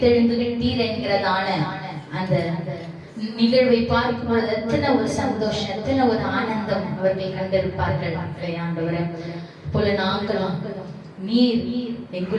விட்டீர் என்கிறதான அந்த நிகழ்வை பார்க்கும் பொழுது எத்தனை ஒரு சந்தோஷம், எத்தனை ஒரு ஆனந்தம் அவர்கள் கண்டிருப்பார்கள். ஆண்டவரே, போல நாங்களும் நீர்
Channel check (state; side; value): identical; both; correlation 1.00